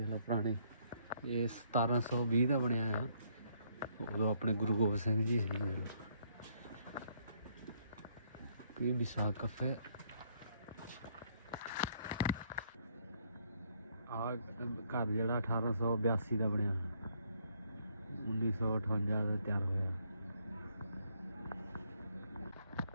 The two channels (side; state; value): both; inverted; correlation -0.69